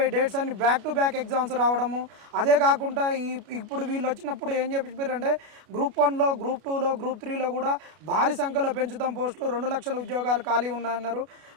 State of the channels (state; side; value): late; left; 33 ms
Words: డేట్స్ అన్ని బ్యాక్ టు బ్యాక్ ఎగ్జామ్స్ రావడము. అదే కాకుండా ఇప్పుడు వీళ్ళు వచ్చినప్పుడు ఏం చెప్పారంటే గ్రూప్ 1లో, గ్రూప్ 2లో, గ్రూప్ 3లో కూడా భారీ సంఖ్యలో పెంచుతాం పోస్టులు, 2 లక్షల ఉద్యోగాలు ఖాళీ ఉన్నాయన్నారు.